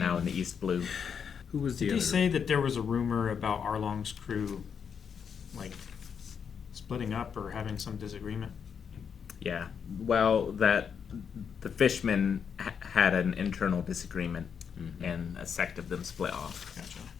in the East Blue. Who was the Did other? he say that there was a rumor about Arlong's crew, like, splitting up or having some disagreement? Yeah, well, that the fishermen had an internal disagreement, and a sect of them split off. Gotcha.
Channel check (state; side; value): quieter; right; 7.0 dB